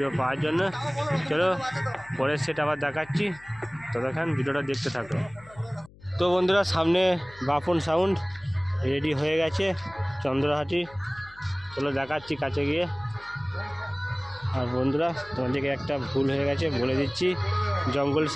পাওয়ার জন্য। চলো পরের সেট আবার দেখাচ্ছি, ততক্ষণ ভিডিওটা দেখতে থাকো। তো বন্ধুরা, সামনে বাপন সাউন্ড রেডি হয়ে গেছে চন্দ্রহাটি। চলো দেখাচ্ছি কাছে গিয়ে। আর বন্ধুরা, তোমাদেরকে একটা ভুল হয়ে গেছে বলে দিচ্ছি, জঙ্গল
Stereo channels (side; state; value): left; noise; hum, 23 dB below the sound